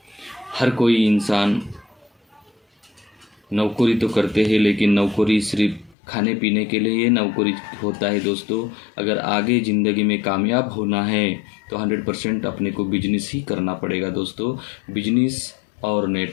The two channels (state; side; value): drops out; right; at 6.0 s